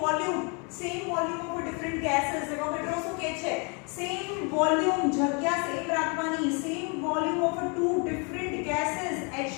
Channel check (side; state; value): right; quieter; 34.0 dB